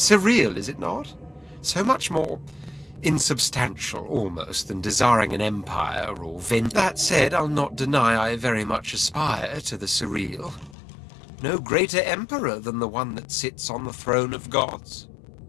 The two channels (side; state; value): right; drops out; at 10.8 s